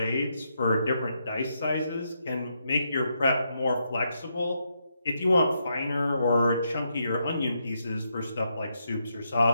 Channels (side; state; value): both; inverted; correlation -0.80